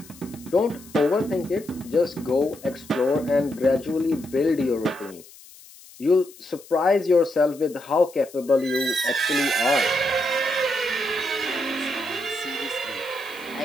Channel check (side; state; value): left; noise; hiss, 21 dB below the sound